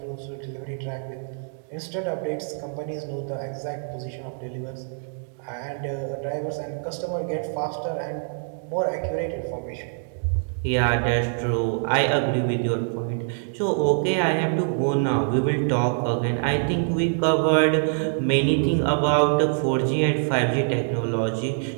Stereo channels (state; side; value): silent; left; digital silence